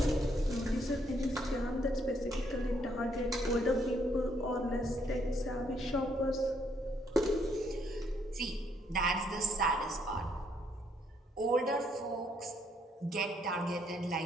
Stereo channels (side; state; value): both; normal; correlation 0.70